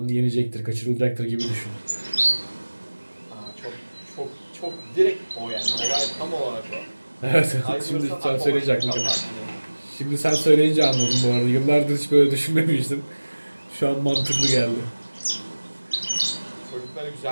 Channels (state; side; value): inverted; both; correlation -1.00